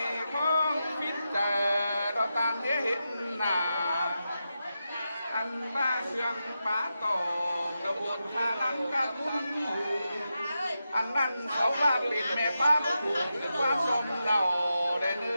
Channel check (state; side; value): inverted; both; correlation -0.88